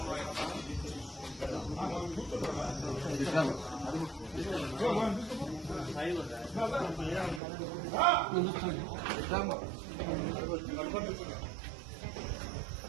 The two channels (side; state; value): left; drops out; at 7.4 s